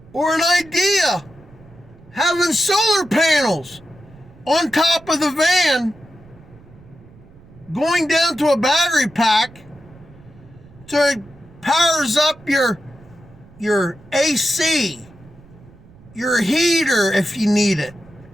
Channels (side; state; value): right; noise; rumble, 24 dB below the sound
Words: Or an idea, having solar panels on top of the van, going down to a battery pack so it powers up your AC, your heater if you need it,